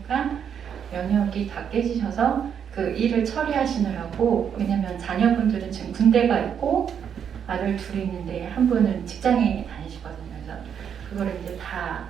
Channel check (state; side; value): quieter; left; 8.0 dB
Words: 면역이 다 깨지셔서 그 일을 처리하시느라고 왜냐면 자녀분들은 지금 군대가 있고 아들 둘이 있는데 한 분은 직장에 다니시거든요. 그래서 그거를 이제 다